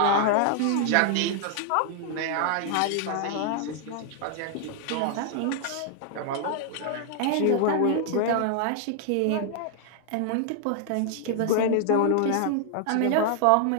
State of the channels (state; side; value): different; both; correlation 0.00